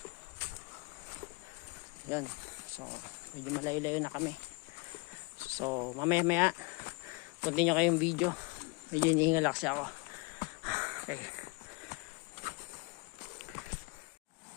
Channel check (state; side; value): quieter; right; 28.8 dB